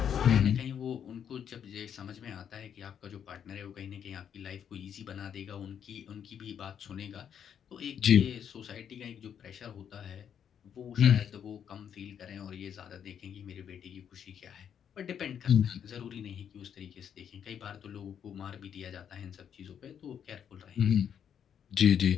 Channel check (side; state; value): right; quieter; 8.5 dB